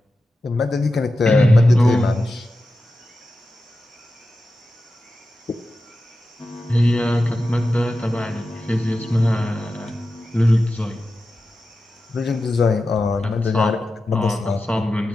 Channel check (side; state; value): both; normal; correlation 0.92